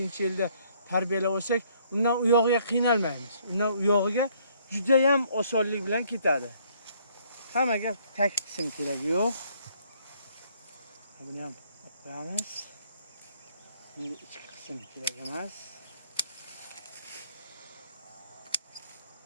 tarbiyalab olsak, undan u yog'iga qiynalmaymiz. Undan u yog'iga juda ham osonlik bilan ketadi. Hammaga tak qism keragi yo'q. Buni ham qo'yamiz. Endi ichki qism kerak emas.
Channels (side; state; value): both; inverted; correlation -0.64